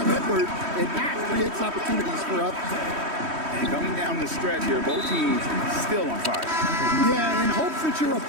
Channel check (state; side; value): late; left; 3.1 ms